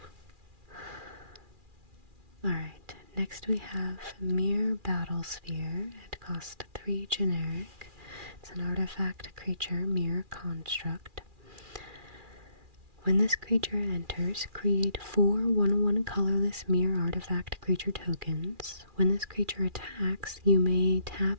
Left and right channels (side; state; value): left; late; 2.4 ms